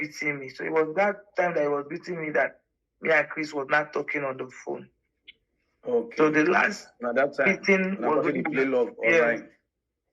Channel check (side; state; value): both; identical; correlation 1.00